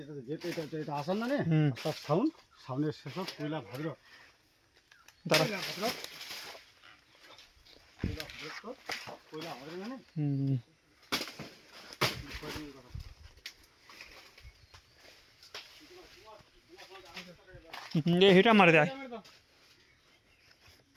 যেতে এটা আসান না নে হুম। তার সাউন্ডের শেষ কয়লা ভাদ্র দাঁড়া কয়লা ভাদ্র মানে হুম ये हिटा मार दे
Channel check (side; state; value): both; identical; correlation 1.00